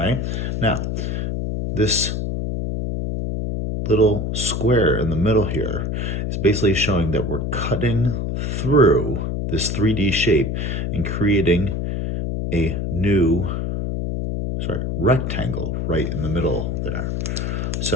Now, this little square in the middle here is basically showing that we're cutting through this 3D shape and creating a new rectangle right in the middle there.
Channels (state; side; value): noise; left; hum, 1 dB below the sound